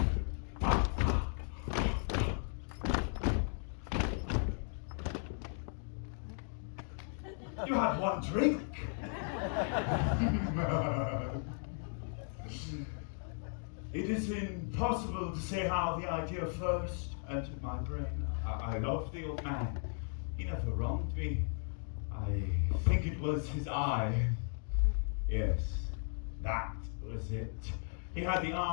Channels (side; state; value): right; silent; 54 dB below the other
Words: You had one drink. It is impossible to say how the idea first entered my brain. I love the old man. He never wronged me. I think it was his eye. Yes, that was it. He had the